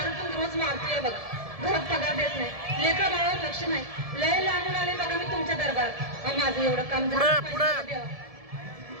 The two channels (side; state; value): left; late; 1.7 ms